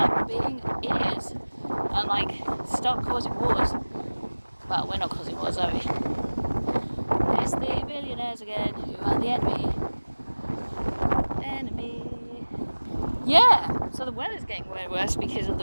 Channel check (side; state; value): both; inverted; correlation -1.00